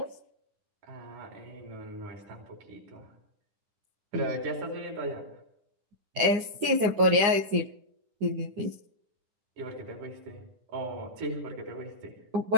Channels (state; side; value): late; left; 9.7 ms